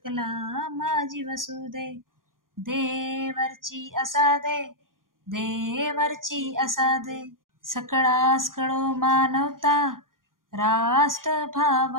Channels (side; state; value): left; late; 0.90 ms